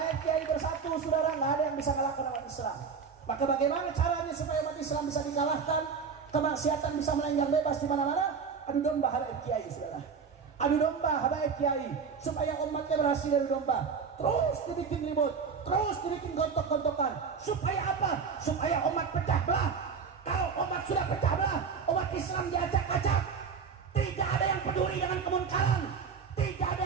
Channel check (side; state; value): left; quieter; 5.9 dB